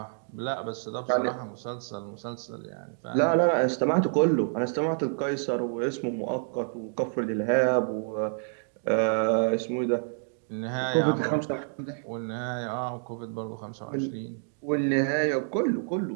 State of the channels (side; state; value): left; silent; digital silence